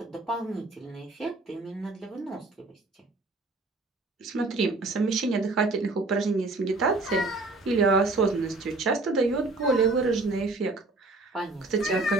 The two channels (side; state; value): left; quieter; 3.3 dB